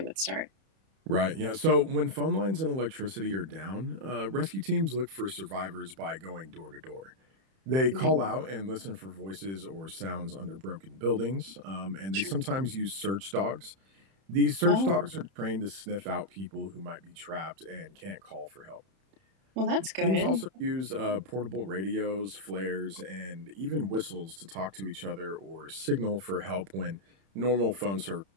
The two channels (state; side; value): late; left; 31 ms